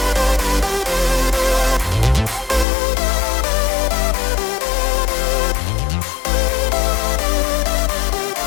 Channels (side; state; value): right; drops out; at 2.7 s